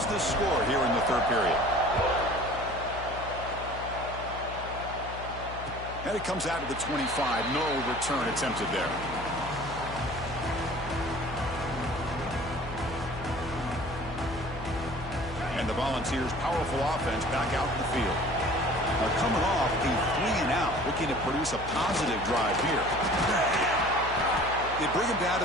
the score here in the 3rd period. And it comes out to the 25. No return attempted there. And the Volunteers' powerful offense back out in the field. They're coming off a 3-and-out, looking to produce a positive drive here. They bring him down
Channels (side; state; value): left; noise; hum, 11 dB below the sound